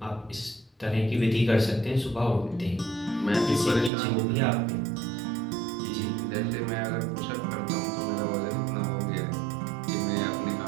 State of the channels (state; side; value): drops out; left; at 3.9 s